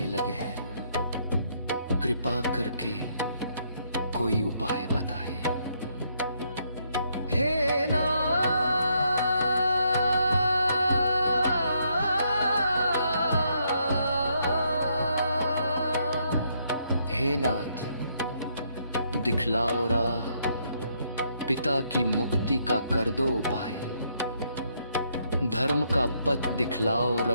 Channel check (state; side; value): inverted; both; correlation -0.73